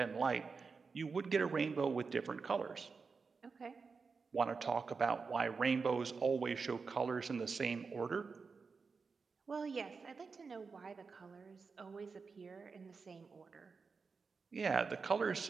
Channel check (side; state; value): left; quieter; 4.9 dB